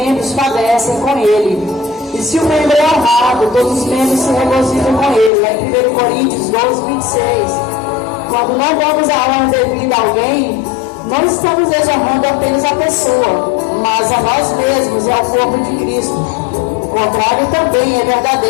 padecem com ele. E se o membro é honrado, todos os membros se regozijam com ele. Lá em 1 Coríntios 12, 26. Quando não damos a honra devida a alguém, não estamos desonrando apenas a pessoa, mas a nós mesmos e ao corpo de Cristo. O contrário também é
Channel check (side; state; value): right; drops out; at 5.3 s